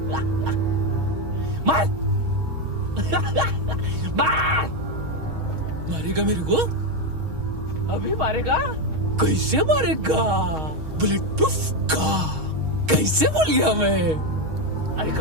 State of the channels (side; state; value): left; late; 6.4 ms